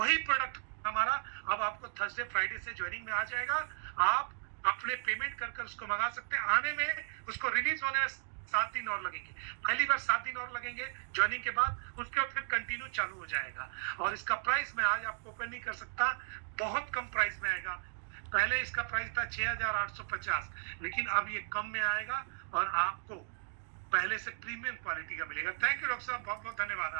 प्रोडक्ट हमारा अब आपको थर्सडे फ्राइडे से ज्वाइनिंग में आ जाएगा। आप अपने पेमेंट कर उसको मंगा सकते हैं। आने में उसको रिलीज होने में 7 दिन और लगेंगे। पहली बार 7 दिन और लगेंगे ज्वाइनिंग के बाद, उसके बाद फिर कंटिन्यू चालू हो जाएगा। और इसका प्राइस मैं आज आपको ओपन नहीं कर सकता, बहुत कम प्राइस में आएगा। पहले इसका प्राइस था 6,850, लेकिन अब ये कम में आएगा और आपको पहले से प्रीमियम क्वालिटी का मिलेगा। थैंक यू डॉक्टर साहब, बहुत बहुत धन्यवाद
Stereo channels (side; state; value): left; silent; digital silence